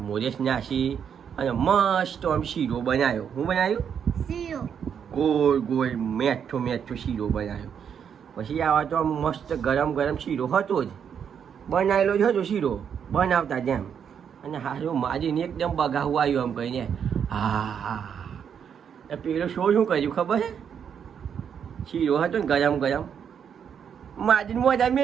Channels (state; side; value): quieter; left; 7.8 dB